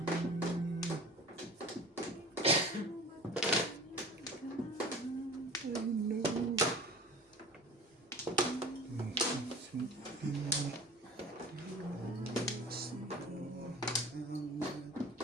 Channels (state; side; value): normal; both; correlation 0.40